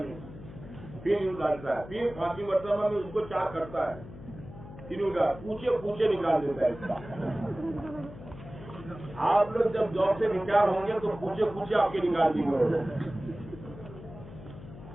پھر یوں ڈالتا ہے، پھر پانچویں مرتبہ میں اس کو چار کرتا ہے، پھر یوں پوچھے نکال دیتا ہے اس کا۔ آپ لوگ جب جاب سے ریٹائر ہوں گے تو پوچھے آپ کے نکال دیں گے،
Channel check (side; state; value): left; noise; hum, 15 dB below the sound